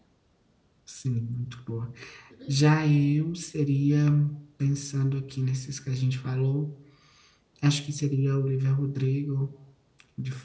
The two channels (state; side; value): identical; both; correlation 1.00